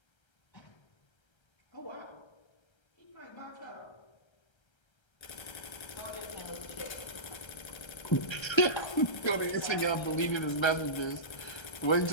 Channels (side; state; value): right; late; 1.3 ms